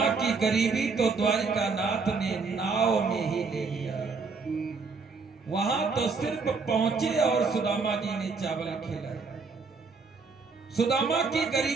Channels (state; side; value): quieter; left; 4.6 dB